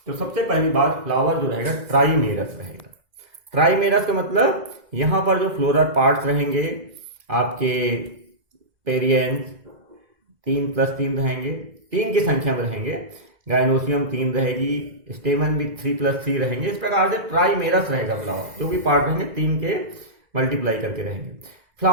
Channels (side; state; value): left; late; 2.0 ms